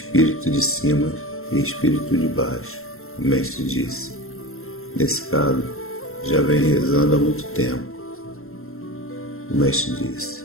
de cima e espírito de baixo. O mestre disse: nesse caso, já vem rezando há muito tempo. O mestre disse:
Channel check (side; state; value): right; late; 0.62 ms